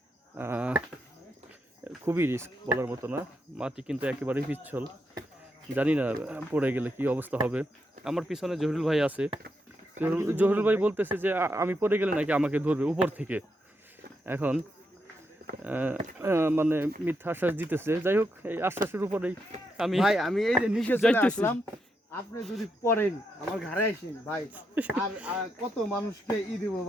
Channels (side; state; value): both; normal; correlation 0.82